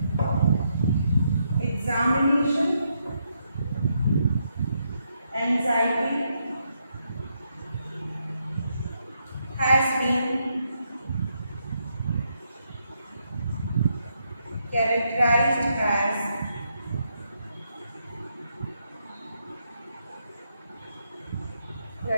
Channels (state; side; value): inverted; both; correlation -0.79